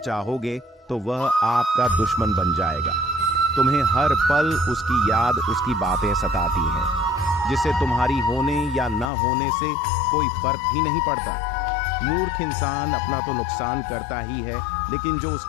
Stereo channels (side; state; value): right; drops out; at 9.1 s